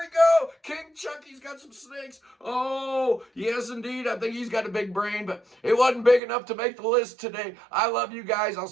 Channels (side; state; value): left; drops out; at 6.2 s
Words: go. King Chucky's got some snakes. Oh, yes, indeed. I think he's got a big brain, but it wasn't big enough to make the list today. I love you guys. I'll